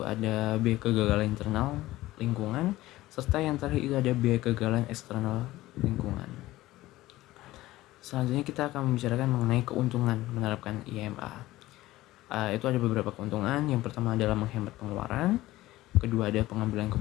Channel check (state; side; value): quieter; right; 17.0 dB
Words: ada biaya kegagalan internal lingkungan, serta yang terakhir itu ada biaya kegagalan eksternal lingkungan. Selanjutnya kita akan membicarakan mengenai keuntungan menerapkan IMA. Itu ada beberapa keuntungan. Yang pertama adalah menghemat pengeluaran. Kedua ada pengambilan